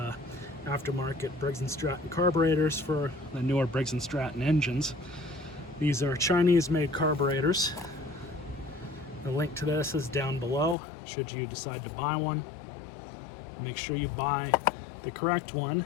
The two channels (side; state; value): right; drops out; at 10.8 s